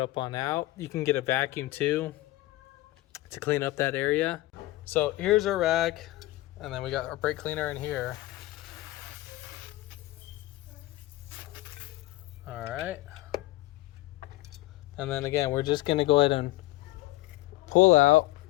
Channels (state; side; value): quieter; right; 18.2 dB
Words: on out. You can get a vacuum too to clean up that area. So here's our rag, and then we got our brake cleaner in here. All right. And then again, we're just going to go ahead and pull out,